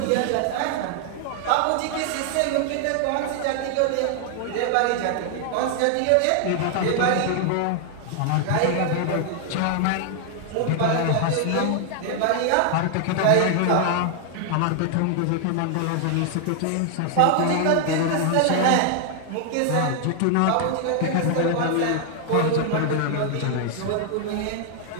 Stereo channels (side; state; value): both; different; correlation 0.00